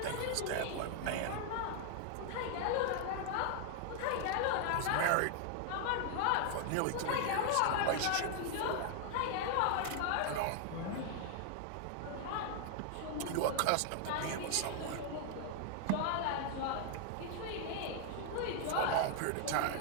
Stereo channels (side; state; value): both; different; correlation 0.00